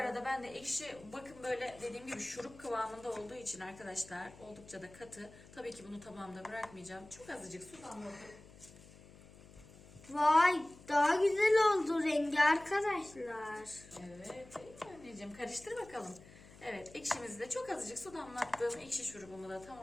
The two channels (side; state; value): left; noise; hum, 21 dB below the sound